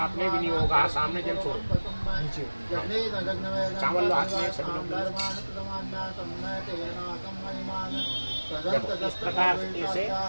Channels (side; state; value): both; inverted; correlation -1.00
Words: अपने विनियोगा। सामने जल छोड़, चावल लो हाथ में सभी लोग। इस प्रकार से